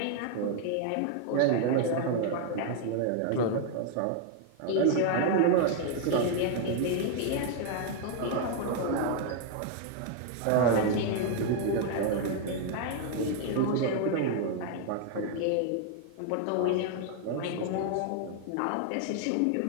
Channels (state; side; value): different; both; correlation 0.00